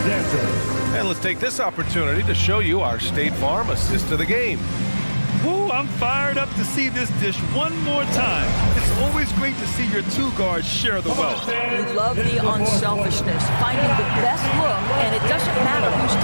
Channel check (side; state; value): both; inverted; correlation -1.00